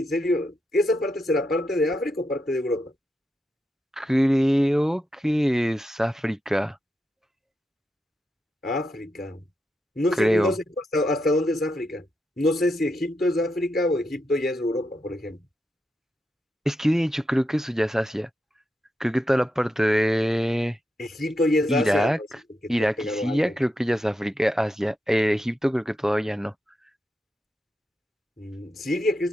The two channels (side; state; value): both; normal; correlation 0.85